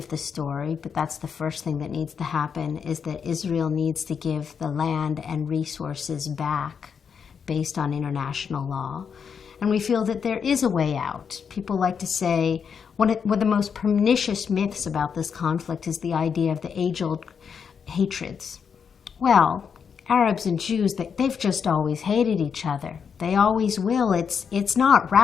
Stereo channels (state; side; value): quieter; right; 6.7 dB